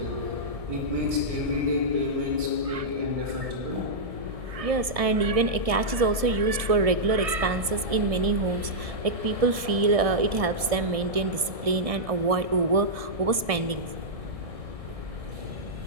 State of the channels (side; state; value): left; late; 1.6 ms